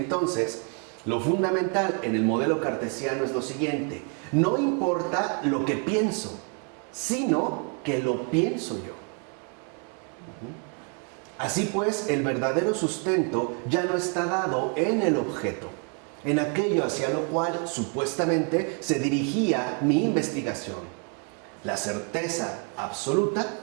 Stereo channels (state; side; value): quieter; left; 38.6 dB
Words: lo fundamental en el modelo cartesiano es lo siguiente: no importa lo que pienso, sino que lo pienso yo. Así pues, el verdadero sustento ya no está dado en el objeto, en aquello hacia lo cual supuestamente se dirigía mi investigación. La certeza absoluta,